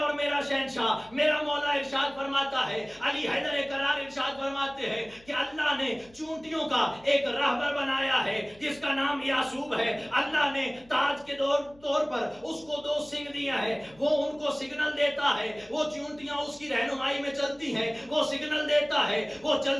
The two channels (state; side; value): noise; left; hum, 27 dB below the sound